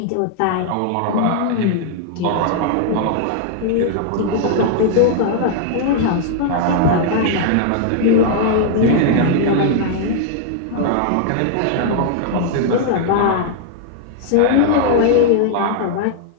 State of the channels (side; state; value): both; different; correlation -0.01